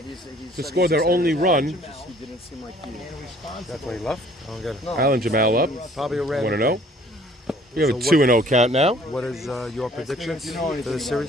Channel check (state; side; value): normal; both; correlation 0.56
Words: to score their only run. that's why he left. I don't get it. Alan Jamal up. Probably a random. 1-0. We have a 2-0 count now. What is your predictions for the